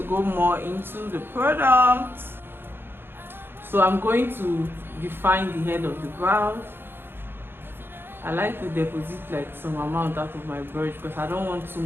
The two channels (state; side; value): late; left; 0.10 ms